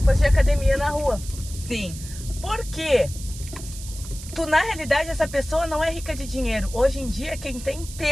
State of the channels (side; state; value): right; noise; hiss, 14 dB below the sound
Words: de academia na rua. Sim. Por quê? Na realidade, essa pessoa não é rica de dinheiro. Hoje em dia, quem tem